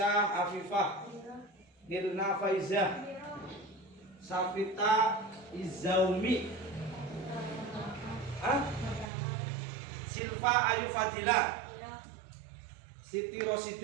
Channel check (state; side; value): drops out; left; at 9.1 s